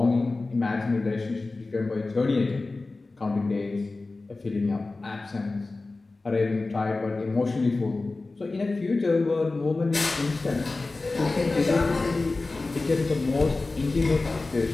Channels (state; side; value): quieter; right; 3.4 dB